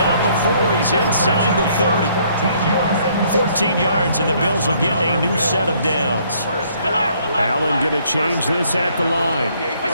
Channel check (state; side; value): inverted; both; correlation -0.64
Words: before he's inside the 30. 14 yards, and the Bills will get a new set of downs. Allen going to change this at the line.